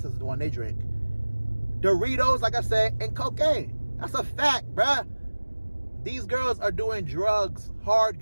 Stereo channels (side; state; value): both; inverted; correlation -1.00